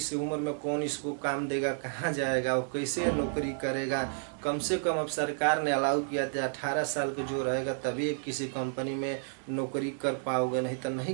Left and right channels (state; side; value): silent; left; digital silence